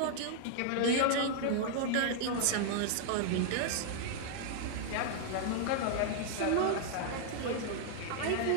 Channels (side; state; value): both; different; correlation -0.01